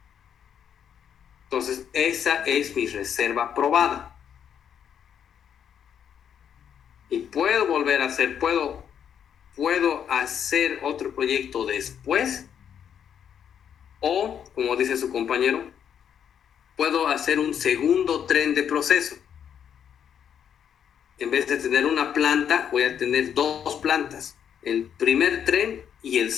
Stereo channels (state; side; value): quieter; right; 8.5 dB